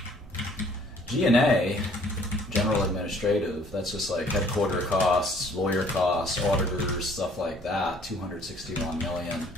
G&A, general administrative, that's just like headquarter costs, lawyer costs, auditors, stuff like that, 261 million.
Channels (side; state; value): both; normal; correlation 0.58